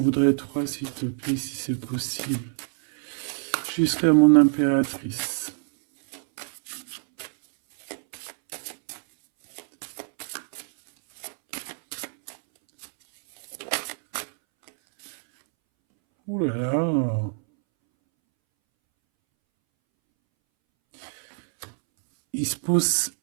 3 s'il te plaît, si c'est possible. Jusqu'à mon impératrice. Ouh là là.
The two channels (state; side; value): silent; left; 61 dB below the other